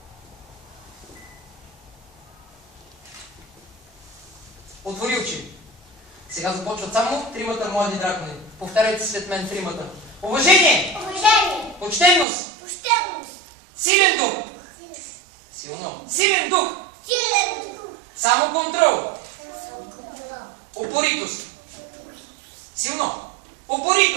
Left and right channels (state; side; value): drops out; left; at 12.2 s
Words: Отвори очи. Сега започват само тримата млади дракони. Повтаряйте след мен тримата. Уважение! Уважение! Почтенност! Почтенност! Силен дух! Силно! Силен дух! Силен дух! Само контрол! Самоконтрол! Упоритост! Силно!